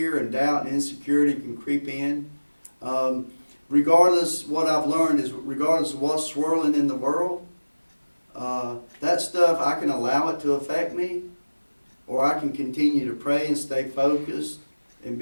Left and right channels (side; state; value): both; inverted; correlation -1.00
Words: and doubt and insecurity can creep in. What I've learned is regardless of what's swirling in the world, that stuff, I can allow it to affect me, or I can continue to pray and stay focused and